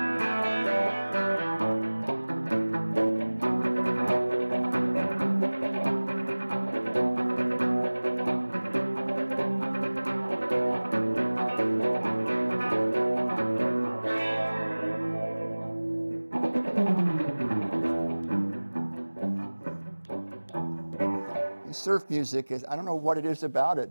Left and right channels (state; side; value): inverted; both; correlation -1.00